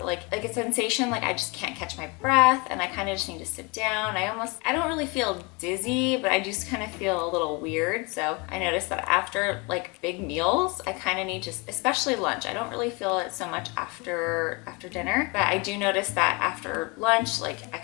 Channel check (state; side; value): quieter; right; 28.9 dB